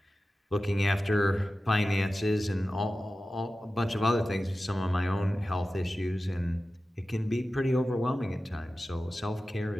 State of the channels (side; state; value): both; normal; correlation 0.94